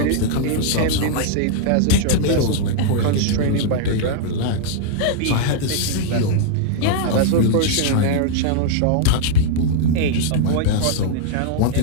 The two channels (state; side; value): different; both; correlation -0.01